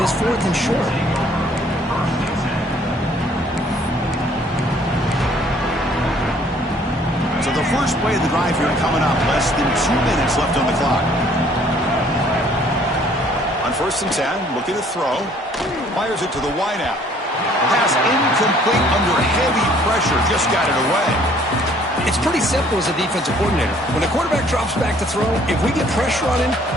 4th and short. So the first play of the drive here coming up. Less than 2 minutes left on the clock. On 1st and 10, looking to throw. Fires it to the wideout. Pass incomplete under heavy pressure. Just got it away. It's pretty simple as a defensive coordinator. When a quarterback drops back to throw, if we get pressure on him,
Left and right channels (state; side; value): normal; both; correlation 0.59